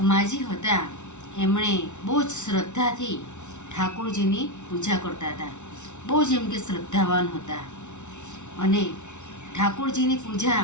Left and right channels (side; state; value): right; late; 0.83 ms